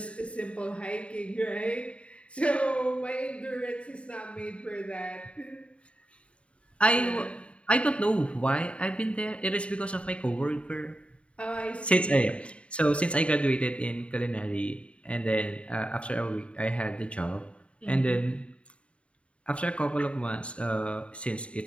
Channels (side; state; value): right; late; 0.061 ms